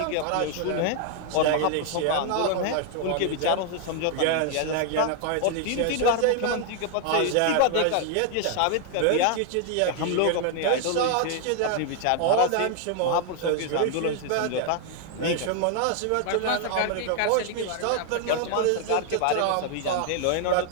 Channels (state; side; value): different; both; correlation 0.00